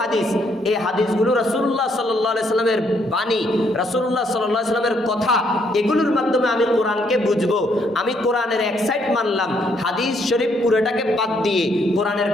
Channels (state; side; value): normal; both; correlation 0.71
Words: হাদিস। এই হাদিসগুলো রাসূলুল্লাহ সাল্লাল্লাহু আলাইহি সাল্লামের বাণী, রাসূলুল্লাহ সাল্লাল্লাহু আলাইহি সাল্লামের কথা, এগুলোর মাধ্যমে আমি কোরআনকে বুঝবো। আমি কোরআনের এক সাইড মানলাম, হাদিস শরীফ পুরোটাকে বাদ দিয়ে কোরআনের